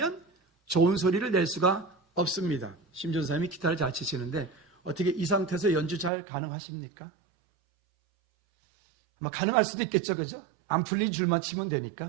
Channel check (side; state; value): left; drops out; at 6.1 s